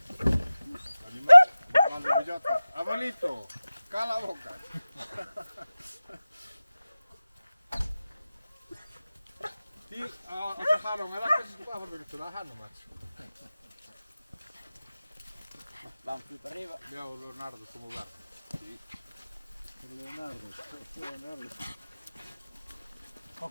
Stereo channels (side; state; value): both; inverted; correlation -0.96